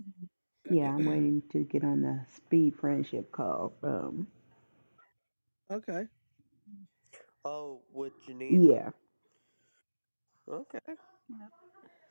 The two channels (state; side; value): inverted; both; correlation -1.00